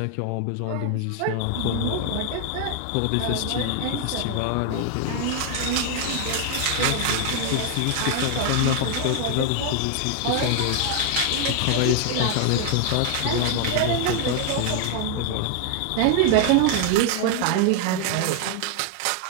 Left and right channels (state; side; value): different; both; correlation 0.00